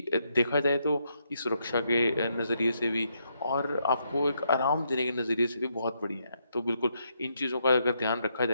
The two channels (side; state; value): both; inverted; correlation -0.78